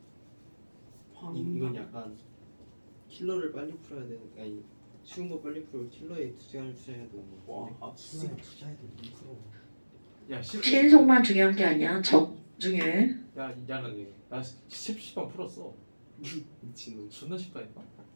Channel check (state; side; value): inverted; both; correlation -1.00